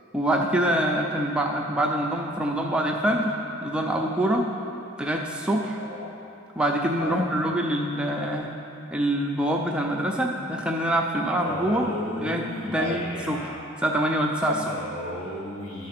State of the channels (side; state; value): both; normal; correlation 0.57